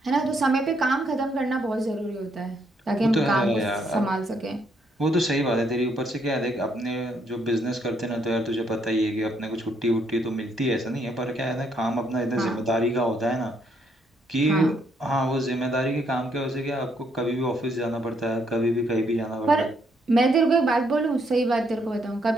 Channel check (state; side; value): normal; both; correlation 0.72